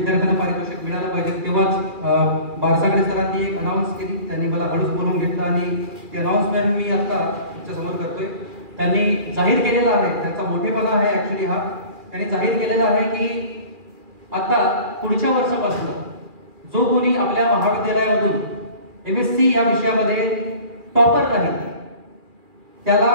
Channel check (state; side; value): late; left; 2.4 ms